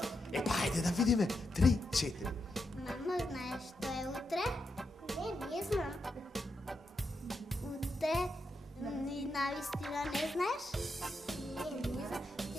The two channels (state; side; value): normal; both; correlation 0.84